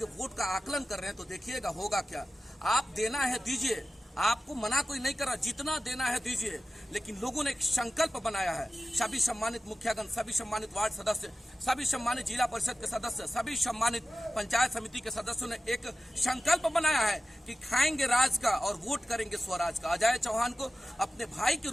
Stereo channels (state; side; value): normal; both; correlation 0.95